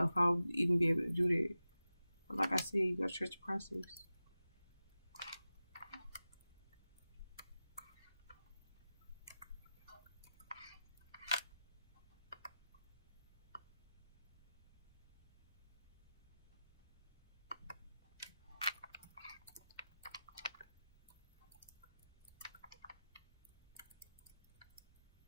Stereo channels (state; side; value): inverted; both; correlation -0.94